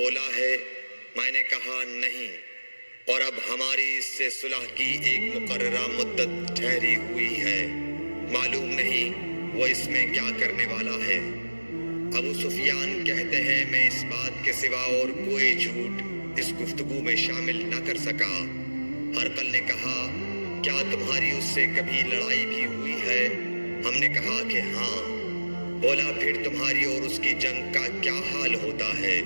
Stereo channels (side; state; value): both; inverted; correlation -1.00